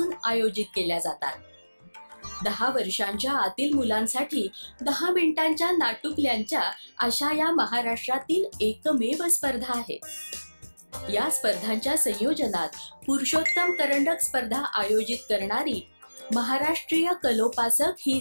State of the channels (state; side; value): inverted; both; correlation -1.00